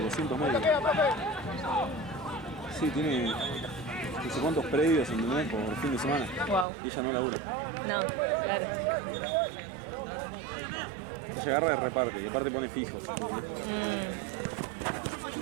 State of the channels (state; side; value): drops out; left; at 6.7 s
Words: 200 metros. Sí, tiene no sé cuántos predios, ¿entendés? Por fin de semana. Wow. Y ella no labura. No, claro. Ella agarra y reparte, y aparte pone fijo.